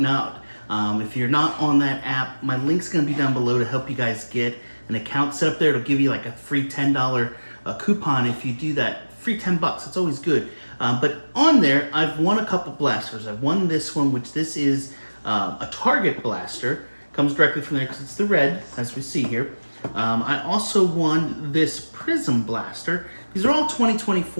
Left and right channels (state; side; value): inverted; both; correlation -1.00